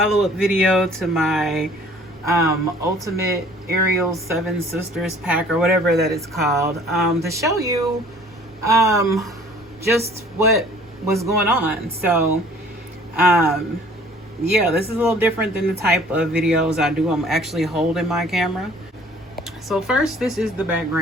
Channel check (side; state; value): both; normal; correlation 0.53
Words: video to my ultimate Ariel 7 Sisters pack, or whatever that it's called, to show you just what was going on. So yeah, this is a little different than the type of videos I do. I'm actually holding my camera. So first, this is the